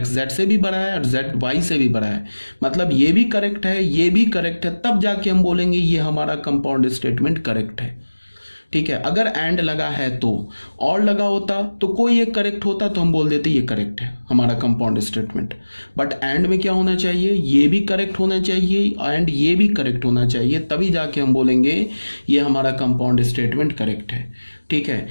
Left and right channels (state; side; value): inverted; both; correlation -1.00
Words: जेड से भी बड़ा है और जेड वाई से भी बड़ा है, मतलब ये भी करेक्ट है, ये भी करेक्ट है, तब जाके हम बोलेंगे ये हमारा कंपाउंड स्टेटमेंट करेक्ट है। ठीक है, अगर एंड लगा है तो, और लगा होता तो कोई एक करेक्ट होता तो हम बोल देते ये करेक्ट है हमारा कंपाउंड स्टेटमेंट। बट एंड में क्या होना चाहिए, ये भी करेक्ट होना चाहिए एंड ये भी करेक्ट होना चाहिए, तभी जाके हम बोलेंगे ये हमारा कंपाउंड स्टेटमेंट करेक्ट है। ठीक है,